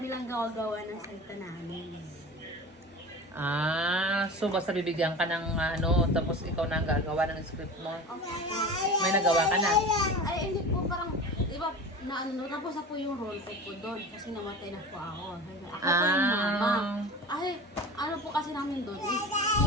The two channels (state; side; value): normal; both; correlation 0.33